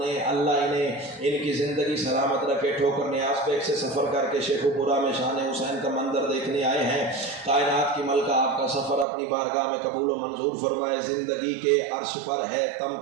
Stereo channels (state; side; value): drops out; left; at 9.1 s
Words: اللہ انہیں ان کی زندگی سلامت رکھے۔ ٹھوکر نیاز بیگ سے سفر کر کے شیخو پورا میں شان حسین کا منظر دیکھنے آئے ہیں۔ کائنات کی ملکہ آپ کا سفر اپنی بارگاہ میں قبول و منظور فرمائے۔ زندگی کے عرش پر ہے